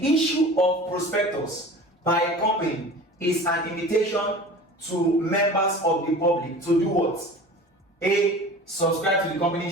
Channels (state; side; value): normal; both; correlation 0.39